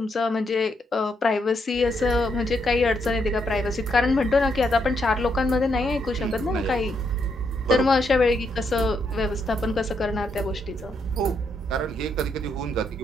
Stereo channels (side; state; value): both; normal; correlation 0.77